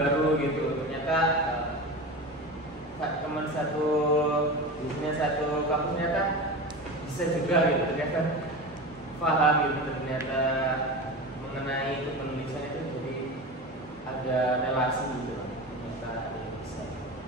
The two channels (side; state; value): both; normal; correlation 0.27